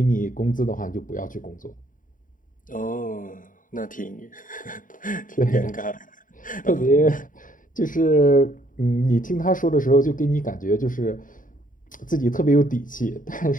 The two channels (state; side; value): late; right; 0.39 ms